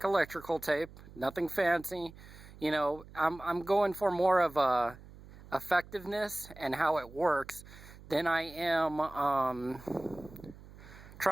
electrical tape, nothing fancy. I'm going for more of a effectiveness and how it works than I am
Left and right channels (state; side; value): noise; right; hum, 19 dB below the sound